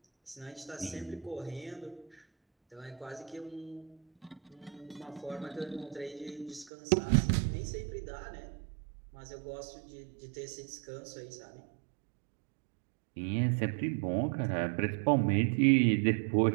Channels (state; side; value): drops out; left; at 6.7 s